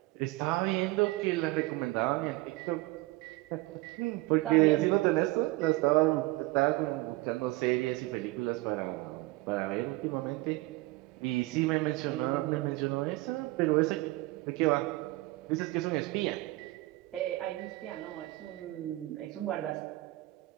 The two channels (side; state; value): left; quieter; 20.4 dB